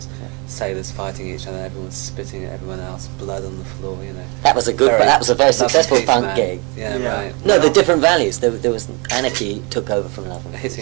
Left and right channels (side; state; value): left; quieter; 30.1 dB